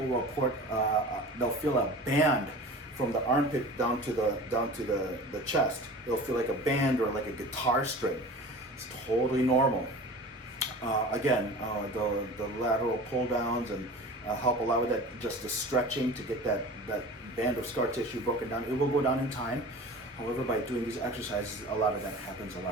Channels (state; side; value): normal; both; correlation 0.37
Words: will report they'll feel a band from the armpit down to the chest. It'll feel like a band or like a guitar string. It's totally normal. Again, the lateral pull downs and help a lot with that, just the stretching to get that band of scar tissue broken down. It will go down in time. However, by doing these exercises, a lot of that happens a